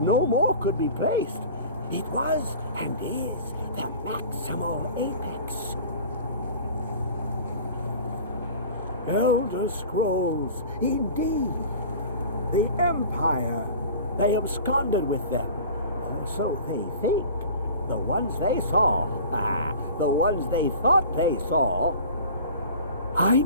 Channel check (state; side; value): inverted; both; correlation -0.40